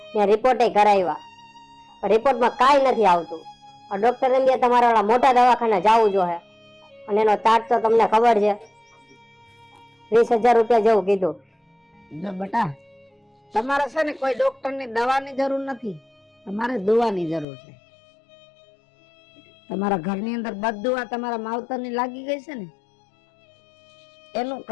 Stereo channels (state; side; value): drops out; right; at 17.4 s